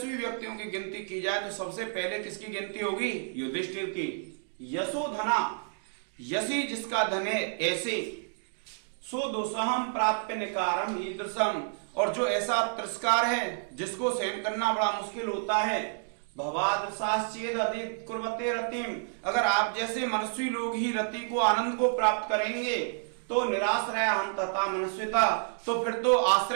व्यक्तियों की गिनती की जाए तो सबसे पहले किसकी गिनती होगी? युधिष्ठिर की। यशोधना, यशी जिसका धन है, ऐसे सो दुस्सहम प्राप्त निकारम ईदृशम, और जो ऐसा तिरस्कार है जिसको सहन करना बड़ा मुश्किल होता है, भवादर्शाश्चेद अधिकुर्वते रतिम, अगर आप जैसे मनस्वी लोग ही रति को, आनंद को प्राप्त करेंगे, तो निराश्रय हम तथा मनस्विता, तो फिर तो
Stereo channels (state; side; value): silent; left; digital silence